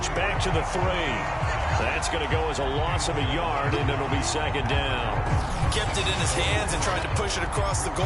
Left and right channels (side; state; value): both; identical; correlation 1.00